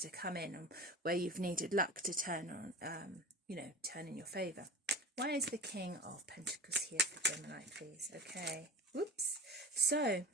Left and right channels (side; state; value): both; normal; correlation 0.32